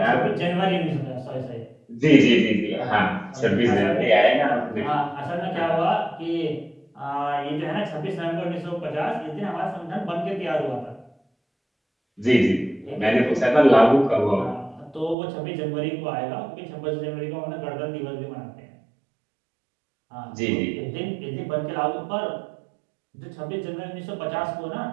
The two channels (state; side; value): drops out; left; at 15.2 s